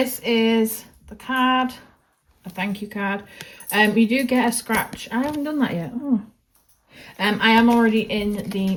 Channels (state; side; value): identical; both; correlation 1.00